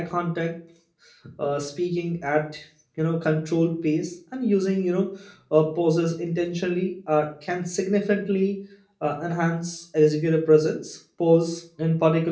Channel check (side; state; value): both; identical; correlation 1.00